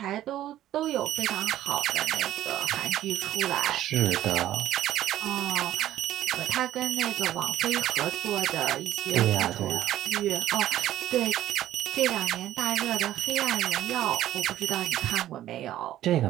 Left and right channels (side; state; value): left; quieter; 13.1 dB